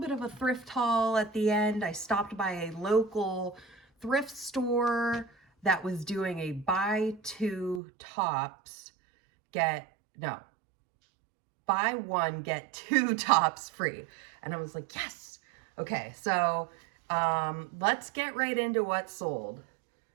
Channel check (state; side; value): drops out; left; at 7.8 s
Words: of a thrift haul at the end. I stopped by a local thrift store that was doing a buy one get two tops free, and I was like, yes. Okay, so let's get right into what sold.